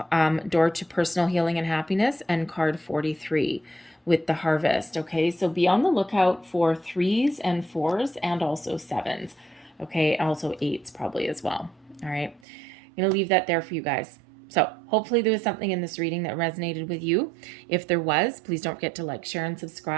to personal healing and happiness, and card 43 with the harvest. Okay, so be on the lookout for 3s and 4s and also 7s. Okay, also 8s probably as well. All right, I'm going to leave that there for you guys. So hopefully there was something in this reading that resonated with you. If there was, please don't forget to like, share, and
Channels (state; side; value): drops out; left; at 12.4 s